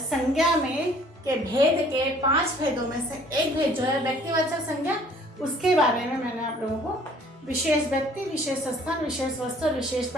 संज्ञा में के भेद के 5 भेदों में से एक भेद जो है व्यक्तिवाचक संज्ञा, उसके बारे में मैंने आप लोगों को विशेष व्यक्ति, विशेष स्थान, विशेष वस्तु और विशेष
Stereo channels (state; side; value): normal; both; correlation 0.56